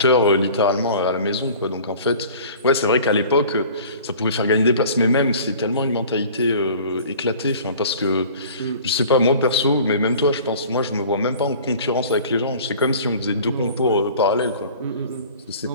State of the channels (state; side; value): inverted; both; correlation -0.45